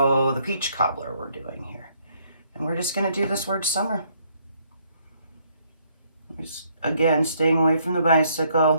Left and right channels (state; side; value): inverted; both; correlation -0.69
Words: the peach cobbler we're doing here. And we're just going to do this word summer. Just, again, staying away from the